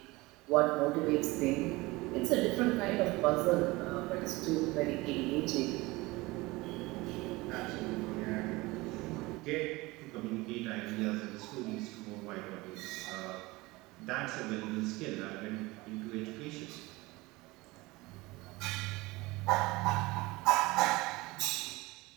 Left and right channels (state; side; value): quieter; left; 21.8 dB